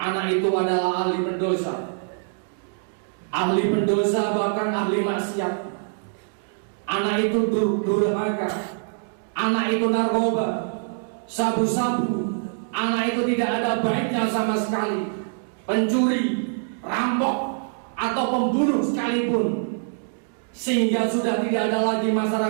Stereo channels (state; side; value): silent; left; digital silence